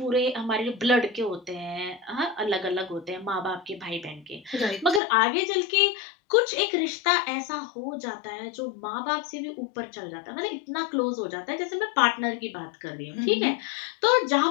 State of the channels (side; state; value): right; drops out; at 5.0 s